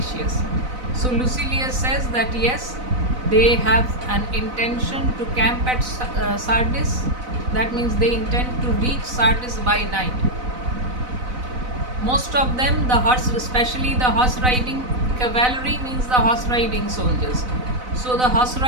So Lucilius says that yes, they have an intention to camp at Sardis. That means they intend to reach Sardis by night. Most of them, the horse, especially the horse riding cavalry, means the horse riding soldiers. So the horse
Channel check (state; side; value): late; left; 4.0 ms